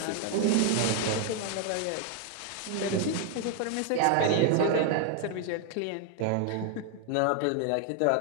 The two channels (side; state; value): both; different; correlation 0.01